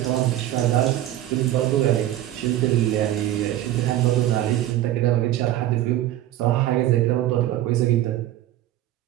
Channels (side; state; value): left; quieter; 13.5 dB